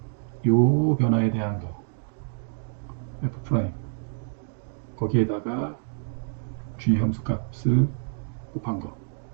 요 변화에 대한 거 f 프라임 거기에다가 g 함수값을 곱한 거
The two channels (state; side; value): silent; left; digital silence